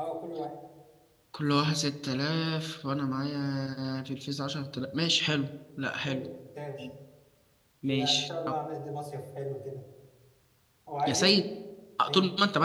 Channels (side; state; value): both; identical; correlation 1.00